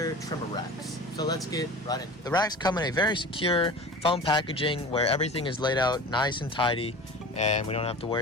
trimmer racks. So let's get right into it. The racks come in a very secure foam packaging where everything is laid out nice and tidy and we don't have to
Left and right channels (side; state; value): both; normal; correlation 0.35